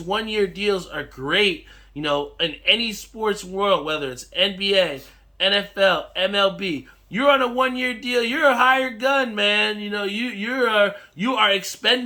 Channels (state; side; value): identical; both; correlation 1.00